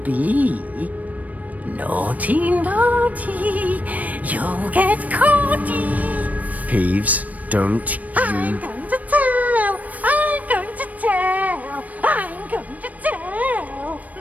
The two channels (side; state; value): left; late; 0.073 ms